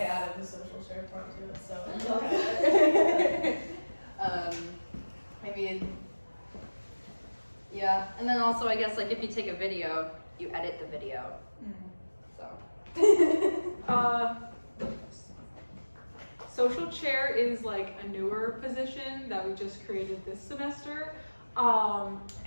added the social share part to it, so. Okay. I mean, yeah, and then also I guess like if you take a video, you edit the video. So. Social chair is like a newer position that we just created this semester.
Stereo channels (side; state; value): both; inverted; correlation -1.00